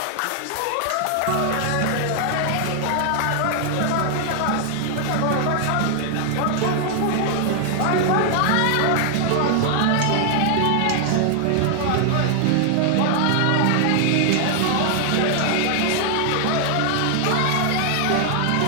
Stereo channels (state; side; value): different; both; correlation 0.00